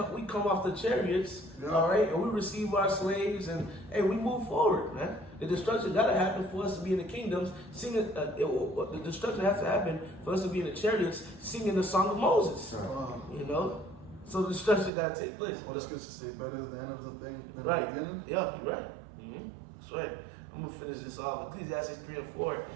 off the chariots, all right, and we receive our slaves, and hey, we move forward, man. The destruction got to happen for us to be in the kingdoms, singing. The destruction has to happen for us to be in the chariots, singing the song of Moses. You know, so the destruction got to take place. What does Scripture say? Better is the end of the thing than right. the beginning. Yeah, you're right. That's right. I'm gonna finish this off. Ecclesiastes 3 and 4.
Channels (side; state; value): left; drops out; at 14.9 s